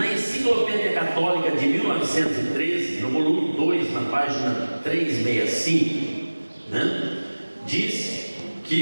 Enciclopédia Católica de 1913, no volume 2, na página 365, diz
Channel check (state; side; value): inverted; both; correlation -1.00